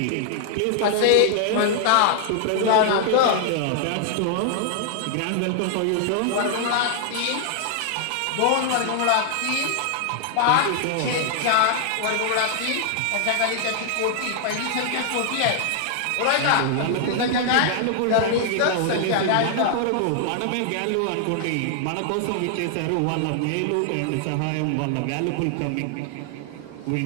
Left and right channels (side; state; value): both; different; correlation 0.00